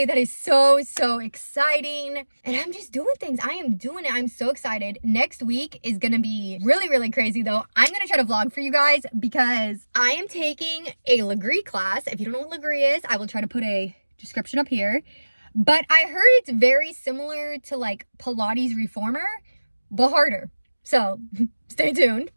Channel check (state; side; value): inverted; both; correlation -1.00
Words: That is so exciting. And I'm just doing things. I am doing it. I'm so excited. Next week is going to be really, really crazy though. I'm going to try to vlog for you guys because I am taking a Legree class. If you don't know what Legree is, I will try to put a description up here. But I heard it's very similar to like Pilates Reformer, but harder. So stay tuned.